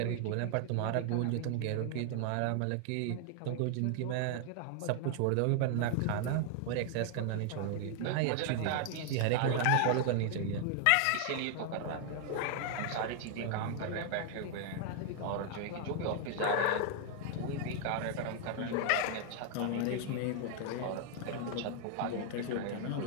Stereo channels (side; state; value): both; different; correlation 0.00